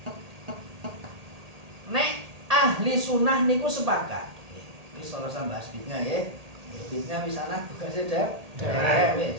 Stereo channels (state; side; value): late; left; 1.8 ms